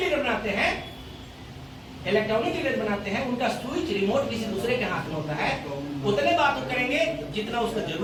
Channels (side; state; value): both; identical; correlation 1.00